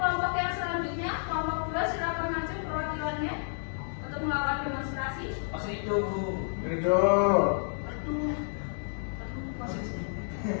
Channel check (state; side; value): silent; right; digital silence